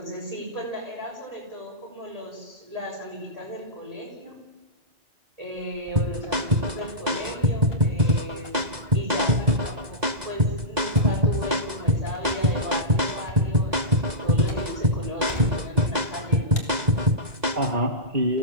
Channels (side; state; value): left; late; 2.0 ms